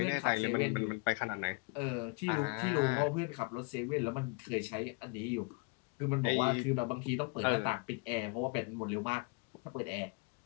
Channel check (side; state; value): right; quieter; 34.0 dB